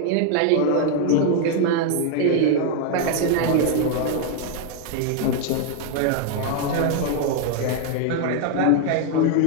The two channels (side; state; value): both; different; correlation 0.00